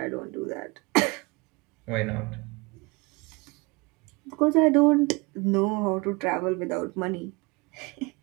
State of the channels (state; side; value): quieter; left; 26.4 dB